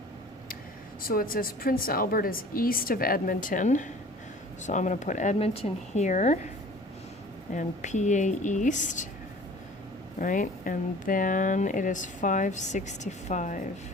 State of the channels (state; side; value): normal; both; correlation 0.46